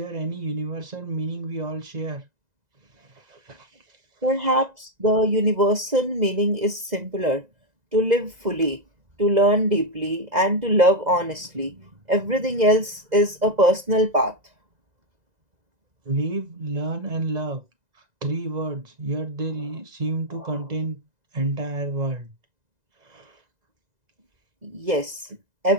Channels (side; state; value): left; late; 2.0 ms